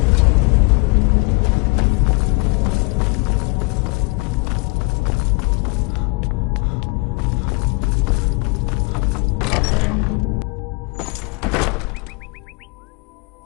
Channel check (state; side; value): quieter; right; 29.4 dB